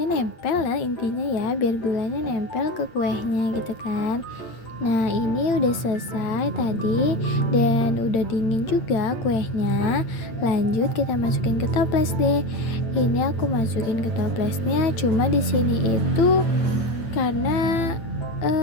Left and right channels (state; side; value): late; right; 9.0 ms